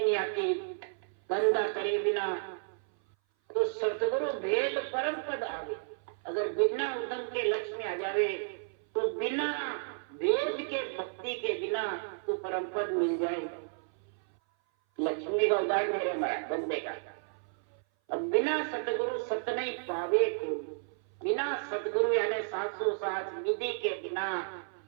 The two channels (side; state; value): left; silent; 56 dB below the other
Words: आती, धंधा करे बिना, तो सतगुरु भेद परम पद आवे। अगर बिना उदम के लक्ष्मी आ जावे, तो बिना वेद के भक्ति के बिना तो परम पद मिल जाए। लक्ष्मी का उदाहरण है हमारा बंदे का। अब बिना सतगुरु सत नहीं पावे को, बिना सतगुरु यानी 707 विधि के बिना